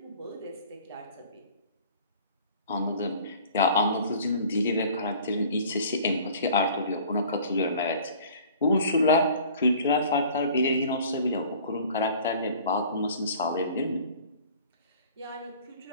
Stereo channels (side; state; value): both; inverted; correlation -0.48